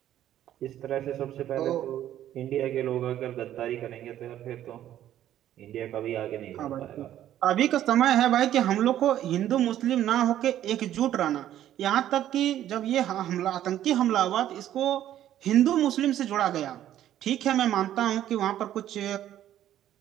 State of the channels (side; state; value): left; quieter; 11.9 dB